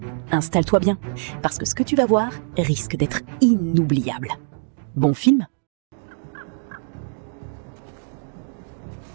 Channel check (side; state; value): left; silent; digital silence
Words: Installe-toi bien, parce que ce que tu vas voir risque d'être inoubliable. Bon film